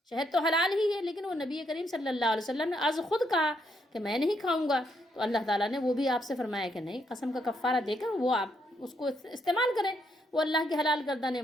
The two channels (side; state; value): both; normal; correlation 0.75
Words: شہد تو حلال ہی ہے، لیکن وہ نبی کریم صلی اللہ علیہ وسلم نے از خود کہا کہ میں نہیں کھاؤں گا، تو اللہ تعالیٰ نے وہ بھی آپ سے فرمایا کہ نہیں، قسم کا کفارہ دے کر وہ آپ اس کو استعمال کریں، وہ اللہ کی حلال کردہ